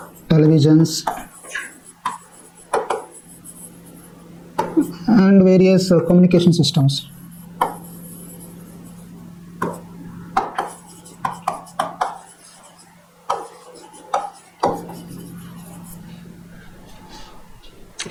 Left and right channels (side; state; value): both; identical; correlation 1.00